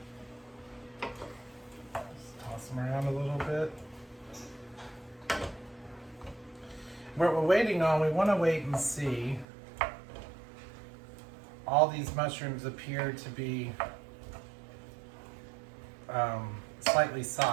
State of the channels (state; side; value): drops out; left; at 9.5 s